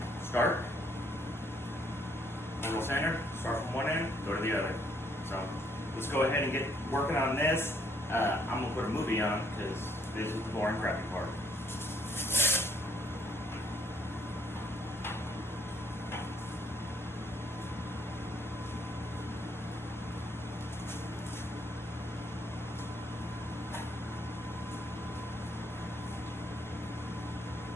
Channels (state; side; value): normal; both; correlation 0.67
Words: start. Orbital sander, start from one end, go to the other. So let's go ahead and get working on this. I'm gonna put a movie on because this is the boring, crappy part.